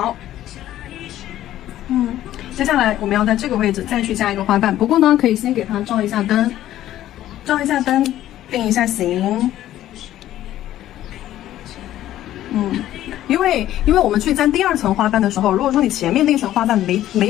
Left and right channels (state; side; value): quieter; right; 13.2 dB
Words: 接下来我们要在这个位置再去加一个花瓣，不过呢，可以先给它照一下灯，定一下型。因为我们去粘第二层花瓣的时候，如果说你前面那层花瓣没